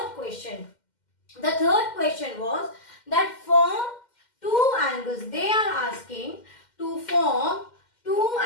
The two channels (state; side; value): late; right; 2.1 ms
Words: question. The third question was that form two angles. They are asking to form two